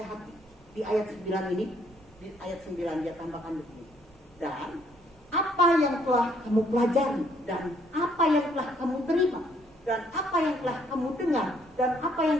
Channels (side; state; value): both; normal; correlation 0.67